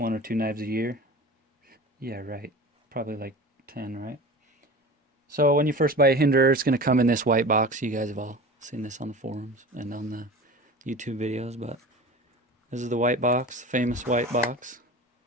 or 2 knives a year. Yeah, right. Probably like 10, right? So when you first buy a Hinderer, it's going to come in this white box. You guys have all seen this on the forums and on the YouTube videos, but this is the white box, famous white box.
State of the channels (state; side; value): normal; both; correlation 0.35